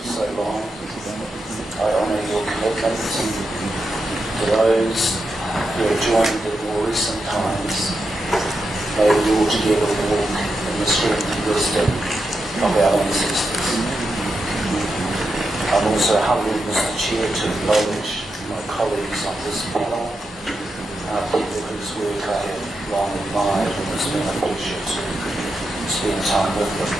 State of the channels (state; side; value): normal; both; correlation 0.86